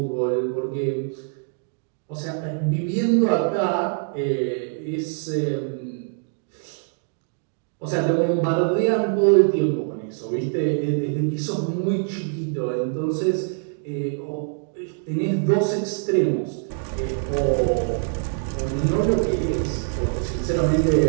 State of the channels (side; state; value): left; silent; 58 dB below the other